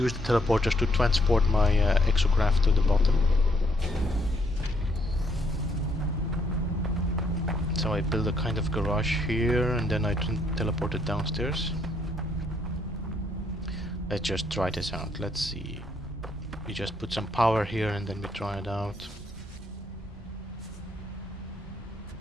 the teleporters to transport my exocraft to the bottom. So I build a kind of garage here and then I teleport it downstairs. Let's just try this out. Let's see. We just put some power here and then we try it out.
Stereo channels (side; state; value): both; normal; correlation 0.71